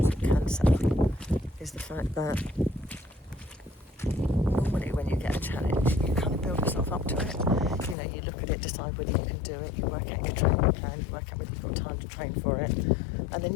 with cancer, is the fact that normally when you get a challenge, you kind of build yourself up to it. You look at it, decide whether you can do it, you work out your training plan, you work out whether you've got time to train for it, and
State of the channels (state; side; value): drops out; right; at 8.0 s